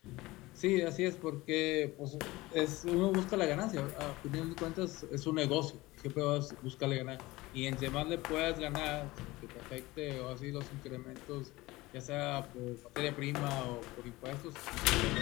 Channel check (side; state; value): right; quieter; 20.0 dB